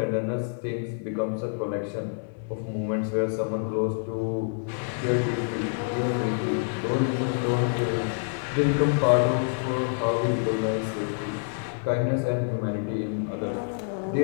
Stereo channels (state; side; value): silent; right; 60 dB below the other